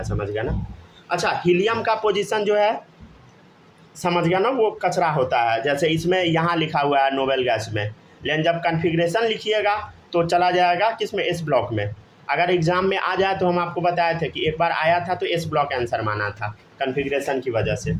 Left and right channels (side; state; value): both; identical; correlation 1.00